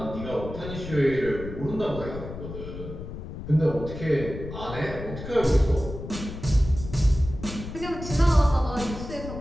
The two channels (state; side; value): noise; left; rumble, 10 dB below the sound